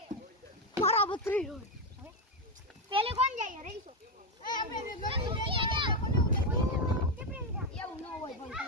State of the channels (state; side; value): normal; both; correlation 0.08